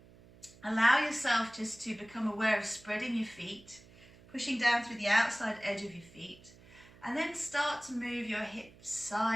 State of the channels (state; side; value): noise; right; hum, 23 dB below the sound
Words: Allow yourself just to become aware of spreading your feet, pushing down through the outside edge of your feet, and then start to move your hips